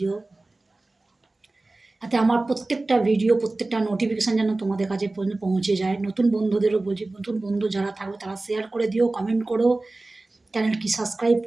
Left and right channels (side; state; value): left; quieter; 3.1 dB